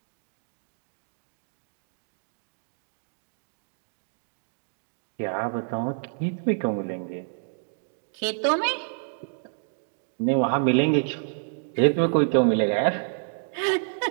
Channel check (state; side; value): silent; left; digital silence